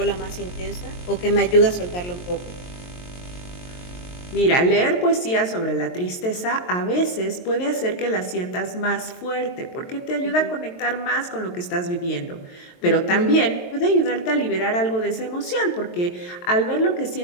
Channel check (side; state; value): right; late; 23 ms